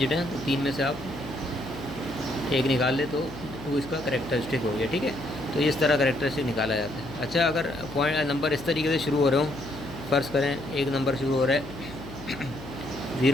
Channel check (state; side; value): noise; left; hum, 14 dB below the sound